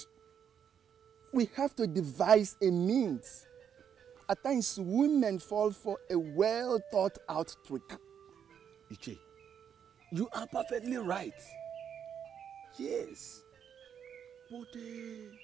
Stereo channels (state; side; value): quieter; left; 8.2 dB